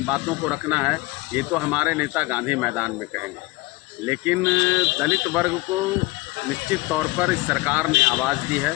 बातों को रखना है, ये तो हमारे नेता गांधी मैदान में कहेंगे। लेकिन दलित वर्ग को निश्चित तौर पर इस सरकार ने आवाज़ दी है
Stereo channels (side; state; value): right; quieter; 22.0 dB